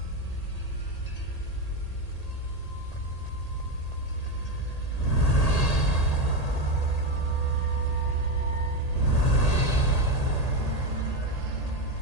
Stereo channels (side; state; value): right; late; 1.8 ms